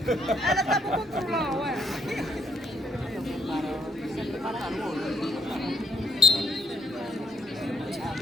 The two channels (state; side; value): normal; both; correlation 0.71